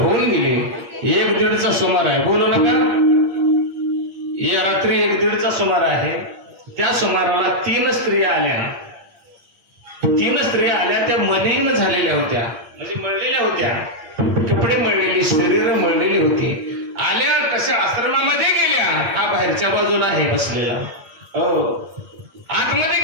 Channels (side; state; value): left; late; 8.8 ms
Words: गेली. 1-1:30चा सुमार आहे. बोलू नका. या रात्री 1-1:30चा सुमार आहे. त्या सुमाराला 3 स्त्रिया आल्या. 3 स्त्रिया आल्या. त्या मलिन झालेल्या होत्या, म्हणजे मळलेल्या होत्या, कपडे मळलेली, शरीर मळलेली होती. आल्या कशा आश्रमामध्ये गेल्या. हा बाहेरच्या बाजूला आहे बसलेला. हो, आतमध्ये